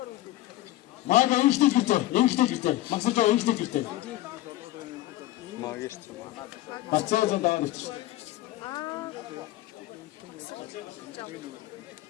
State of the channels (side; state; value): right; quieter; 15.8 dB